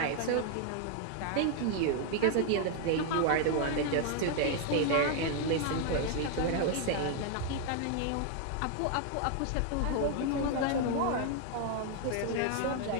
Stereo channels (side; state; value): both; different; correlation 0.00